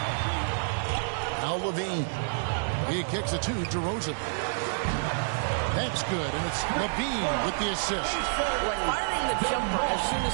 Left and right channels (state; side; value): silent; left; digital silence